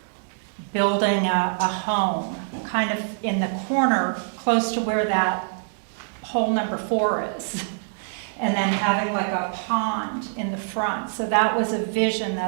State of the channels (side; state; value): left; silent; digital silence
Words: building a home, kind of in the corner, close to where that hole number 4 is, and then having like a pond in the front. So that was a vision